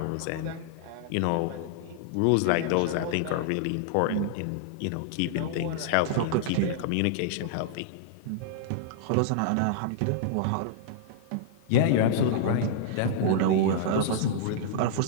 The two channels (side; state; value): both; different; correlation -0.01